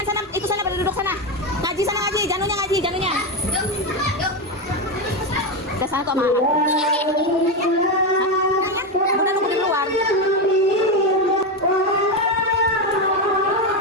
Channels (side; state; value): both; normal; correlation 0.11